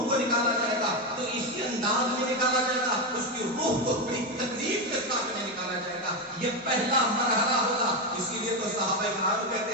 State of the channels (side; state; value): both; normal; correlation 0.10